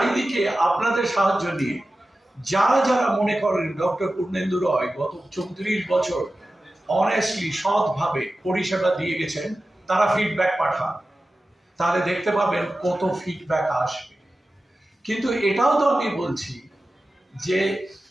আপনাদের সাহায্য নিয়ে যারা যারা মনে করেন ডক্টর পূর্ণেন্দু রয় গত 34 বছর অনেস্টলি সৎভাবে পরিষেবা দিয়ে গেছেন, তারা ফিডব্যাক পাঠান, তাহলে দেখতে পাবেন কত ফিডব্যাক আসবে। কিন্তু এটাও তো আমি বলছি যে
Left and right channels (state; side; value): normal; both; correlation 0.94